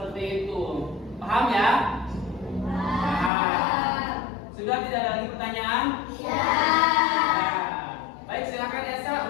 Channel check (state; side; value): drops out; right; at 3.3 s